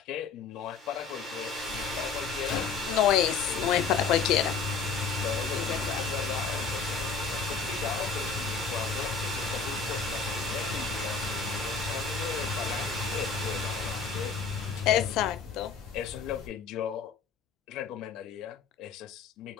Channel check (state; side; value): quieter; right; 5.4 dB